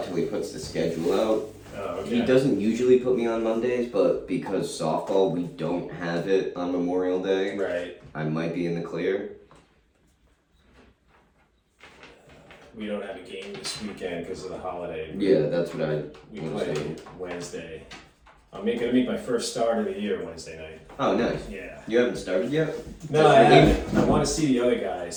till he puts the schedule out. Oh, okay. He doesn't usually put me on Mondays, but because softball, we don't have it on Memorial Day, Right. I might be in the clear. We don't have a game this weekend because of the holiday. Yeah, that's what I We was play saying. Wednesday. I'm gonna make my first start of the year Wednesday night. Oh, nice. Yeah. You haven't started yet? No, I haven't. I want to see the other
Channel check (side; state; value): both; identical; correlation 1.00